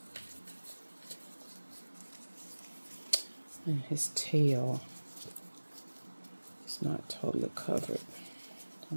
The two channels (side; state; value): both; inverted; correlation -1.00